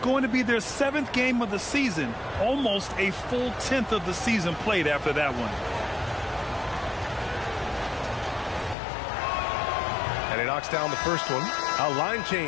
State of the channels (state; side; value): drops out; right; at 8.8 s